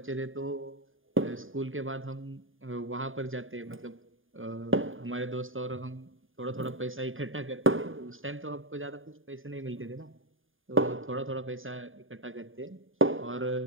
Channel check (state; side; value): late; left; 0.59 ms